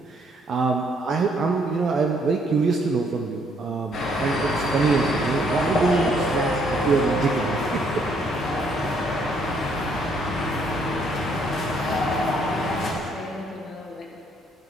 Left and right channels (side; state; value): both; normal; correlation 0.68